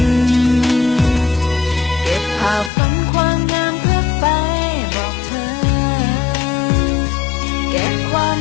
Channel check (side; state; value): right; drops out; at 2.7 s